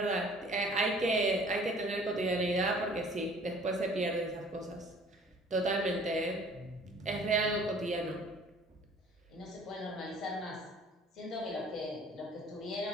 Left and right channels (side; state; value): both; normal; correlation 0.52